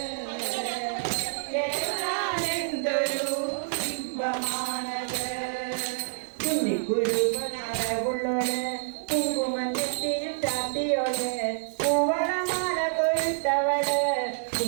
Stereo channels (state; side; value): silent; left; digital silence